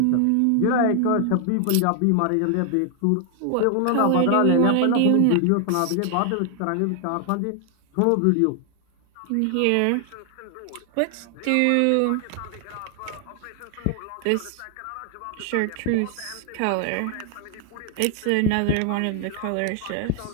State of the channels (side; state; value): both; different; correlation 0.00